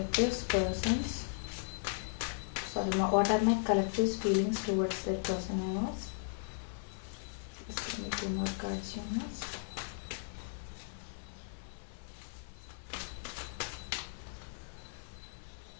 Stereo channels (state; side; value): silent; right; digital silence